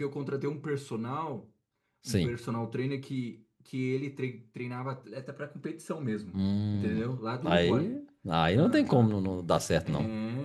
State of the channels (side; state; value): both; identical; correlation 1.00